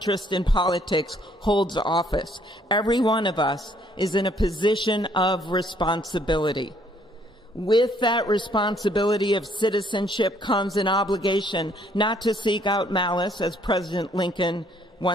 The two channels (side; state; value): both; normal; correlation 0.65